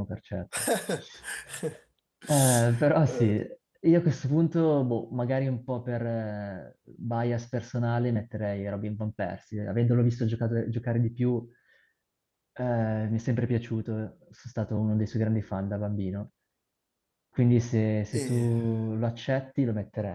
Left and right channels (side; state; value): both; identical; correlation 1.00